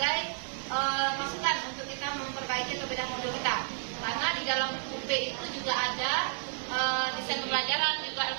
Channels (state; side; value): silent; left; digital silence